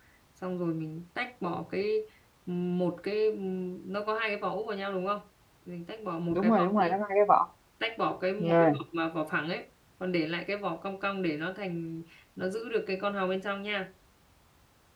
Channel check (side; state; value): both; identical; correlation 1.00